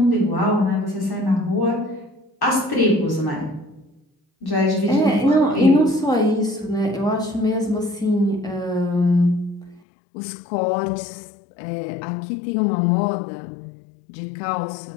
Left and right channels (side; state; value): right; drops out; at 9.8 s